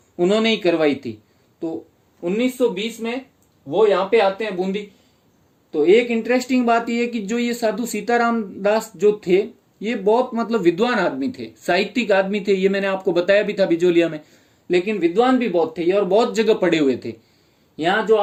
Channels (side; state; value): both; identical; correlation 1.00